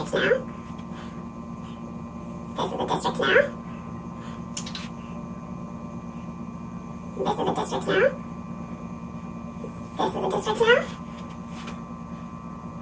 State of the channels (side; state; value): both; identical; correlation 1.00